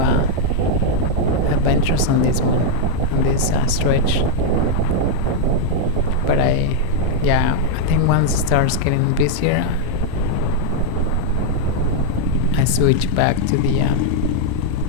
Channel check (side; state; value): both; different; correlation -0.01